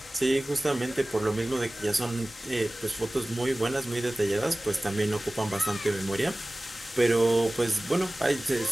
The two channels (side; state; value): both; normal; correlation 0.98